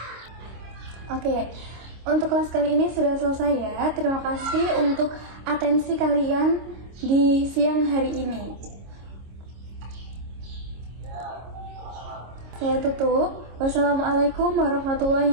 Oke, untuk kelas kali ini sudah selesai ya. Terima kasih untuk atensi kalian di siang hari ini. Saya tutup. Wassalamualaikum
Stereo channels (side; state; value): left; late; 26 ms